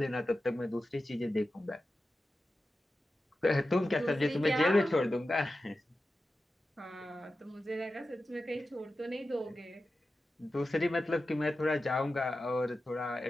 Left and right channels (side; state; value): both; normal; correlation 0.93